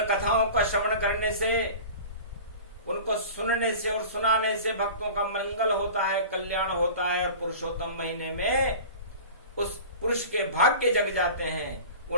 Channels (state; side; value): inverted; both; correlation -0.38